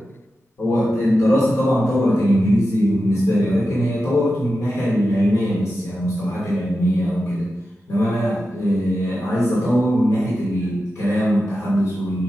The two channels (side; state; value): both; normal; correlation 0.91